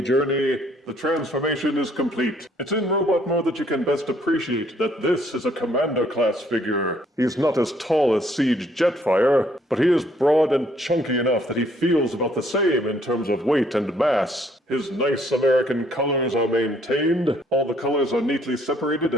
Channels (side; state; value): both; normal; correlation 0.65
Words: journey, the transformation is complete. It's in robot mode that you can best appreciate that this is a Commander-class figure. He's not as tall as Siege Jetfire, but he is broad and chunky enough that he feels about the same in terms of weight and mass. His nice American colors are maintained, all the colors are neatly separated